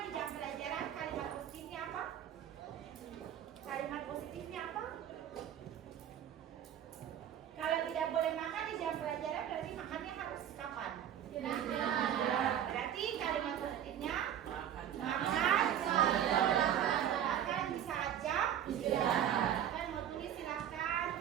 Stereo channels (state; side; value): quieter; left; 10.2 dB